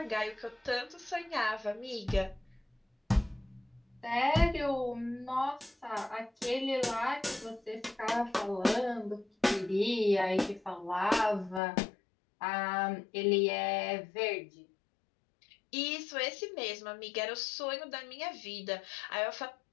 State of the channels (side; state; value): right; drops out; at 11.6 s